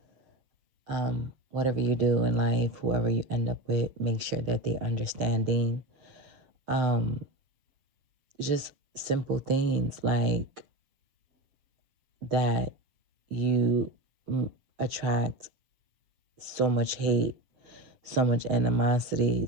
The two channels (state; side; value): late; left; 7.2 ms